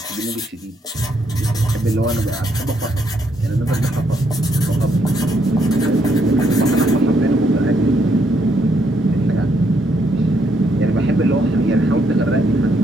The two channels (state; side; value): normal; both; correlation 0.74